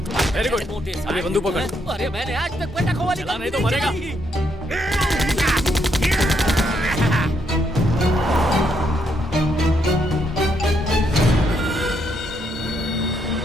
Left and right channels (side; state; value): both; normal; correlation 0.76